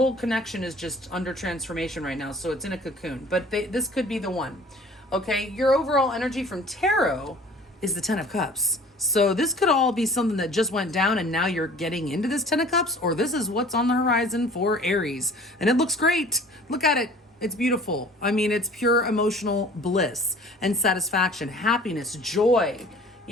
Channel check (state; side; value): normal; both; correlation 0.49